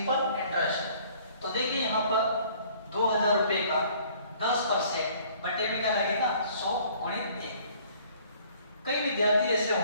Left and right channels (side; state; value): both; inverted; correlation -0.56